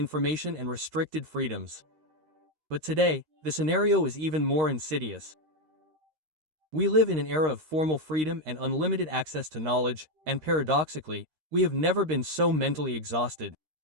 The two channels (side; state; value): left; late; 13 ms